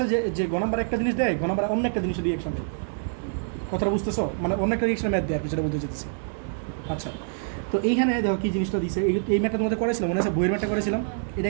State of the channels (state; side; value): silent; left; 61 dB below the other